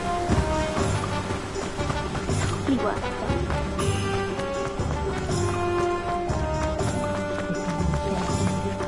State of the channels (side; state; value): both; identical; correlation 1.00